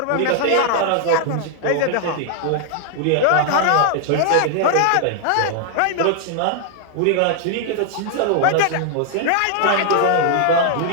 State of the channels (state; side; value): different; both; correlation 0.00